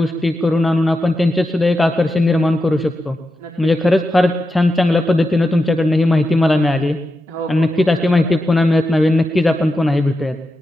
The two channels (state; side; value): normal; both; correlation 0.88